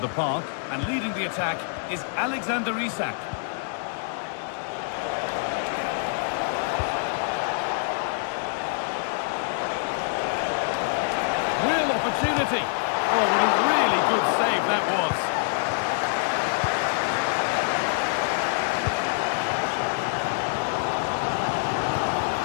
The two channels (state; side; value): silent; right; digital silence